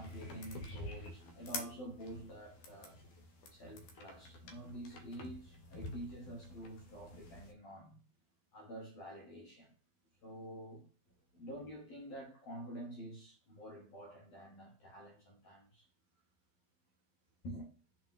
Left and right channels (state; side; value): late; right; 12 ms